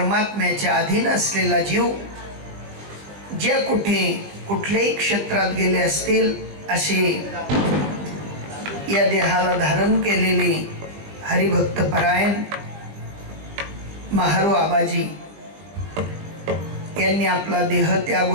अधीन असलेला जीव जे कुठे कुठल्याही क्षेत्रात गेले असतील, असे या देहाला धारण केलेले हरिभक्त परायण महारू आबाजी यांनी आपला देह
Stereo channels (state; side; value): late; left; 20 ms